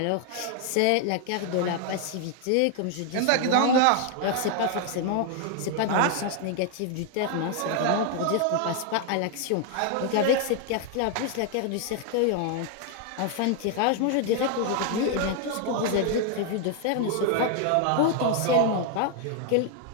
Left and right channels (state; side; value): different; both; correlation 0.00